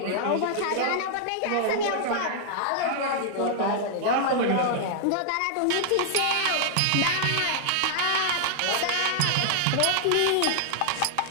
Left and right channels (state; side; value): different; both; correlation -0.01